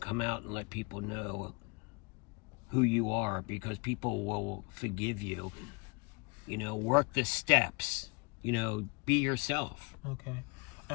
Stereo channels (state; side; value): quieter; right; 29.8 dB